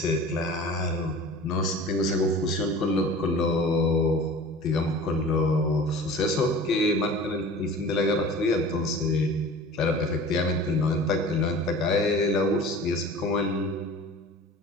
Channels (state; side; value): normal; both; correlation 0.41